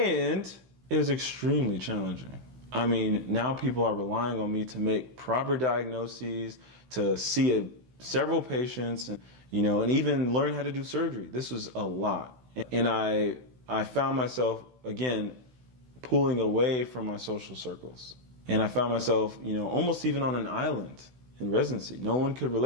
it was extremely challenging. I mean, now people are relying on me to make proper diagnoses, to see several patients, and even learn how to do surgery. This was a lot. And I found myself, again, pulling away from my social circles. And I found myself, almost even on an island in residency. No one could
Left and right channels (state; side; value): late; left; 16 ms